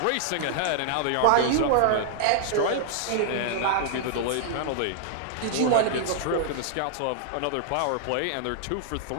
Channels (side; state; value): both; different; correlation -0.01